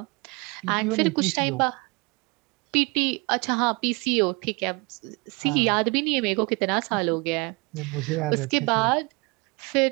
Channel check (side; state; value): left; quieter; 28.8 dB